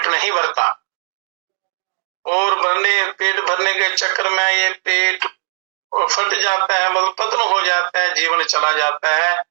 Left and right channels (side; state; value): left; silent; 67 dB below the other